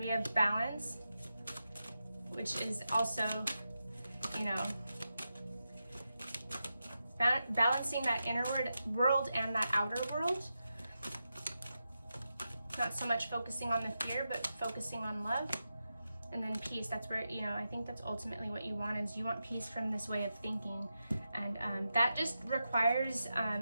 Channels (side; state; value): both; inverted; correlation -0.89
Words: have balance, which is also, you know, balancing that inner world and that outer world. Not so much focusing on the fear, but focusing on love. And then peace, that's where, you know, I think that's ultimately what you want, is you want peace from this way of thinking. And that just requires